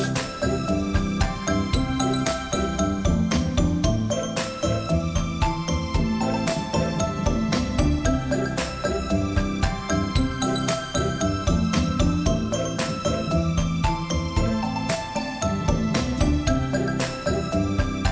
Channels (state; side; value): identical; both; correlation 1.00